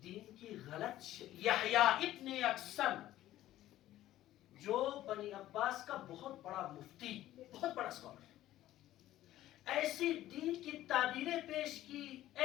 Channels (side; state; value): right; quieter; 14.1 dB